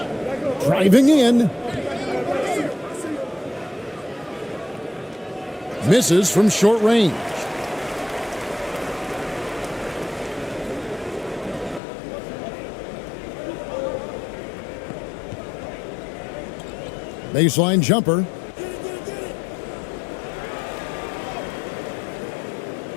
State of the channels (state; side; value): drops out; right; at 11.8 s